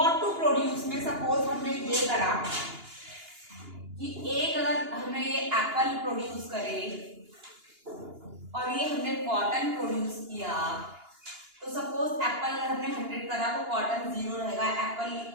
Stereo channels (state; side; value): late; left; 2.9 ms